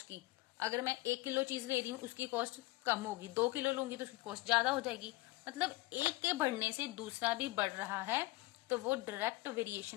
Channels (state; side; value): quieter; right; 20.5 dB